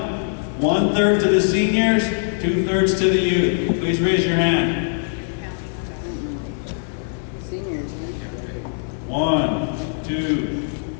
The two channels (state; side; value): silent; right; digital silence